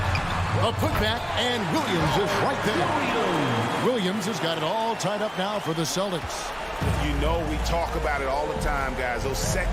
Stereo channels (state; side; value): identical; both; correlation 1.00